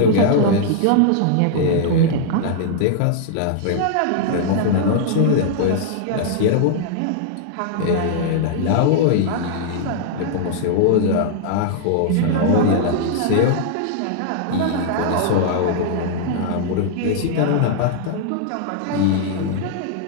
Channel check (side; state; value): both; different; correlation -0.01